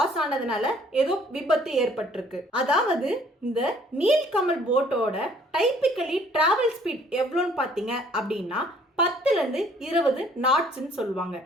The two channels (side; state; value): both; normal; correlation 0.59